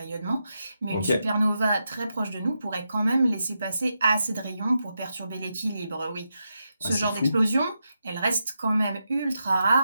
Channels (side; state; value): both; inverted; correlation -0.86